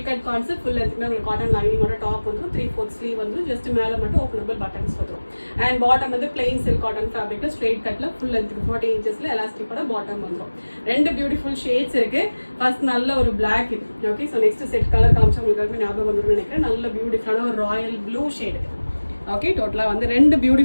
கட் கான்செப்ட் ஃபுல் எடுத்துமே உங்களுக்கு காட்டன் லைனிங்கோட டாப் வந்துடும். 3/4 ஸ்லீவ் வந்து ஜஸ்ட் மேலே மட்டும் ஓப்பனபிள் பட்டன்ஸ் வந்துடும். அண்ட் பாட்டம் வந்து பிளெயின் சில்க் காட்டன் ஃபேப்ரிக்கில் ஸ்ட்ரைட் கட்டில் ஃபுல் 40 இன்ச்சஸ்ல எலாஸ்டிக்கோட பாட்டம் வந்துடும். ரெண்டு பியூட்டிஃபுல் ஷேட்ஸ் இருக்கு. ஃபர்ஸ்ட் நல்ல ஒரு பிளாக் இது. Okay, so next set colour காமிச்சா உங்களுக்கு ஞாபகம் வந்துடும் நினைக்கிறேன். நல்ல பியூட்டிஃபுல்லான ஒரு ராயல் ப்ளூ ஷேடு. ஓகே, டோட்டலாக வந்து ரெண்டு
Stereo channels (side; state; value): both; inverted; correlation -1.00